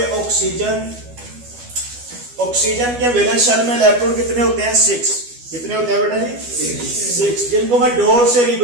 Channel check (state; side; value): late; left; 12 ms